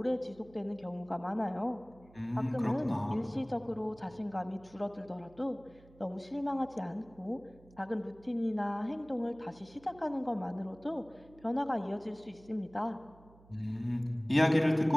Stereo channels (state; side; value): noise; right; hum, 24 dB below the sound